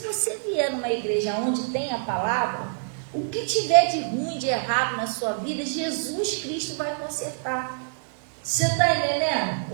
vier numa igreja onde tem a palavra, o que tiver de ruim, de errado na sua vida, Jesus Cristo vai consertar. Você está entendendo?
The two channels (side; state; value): left; silent; digital silence